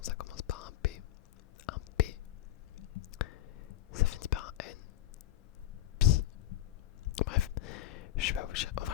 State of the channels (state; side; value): quieter; right; 13.6 dB